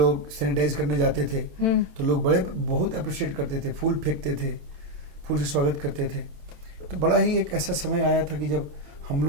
सैनिटाइज करने जाते थे तो लोग बहुत अप्रिशिएट करते थे, फूल फेंकते थे, फूल से स्वागत करते थे। तो बड़ा ही एक ऐसा समय आया था कि जब हम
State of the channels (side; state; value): left; late; 27 ms